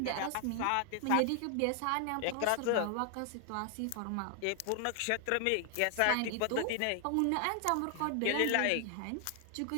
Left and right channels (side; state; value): both; different; correlation 0.00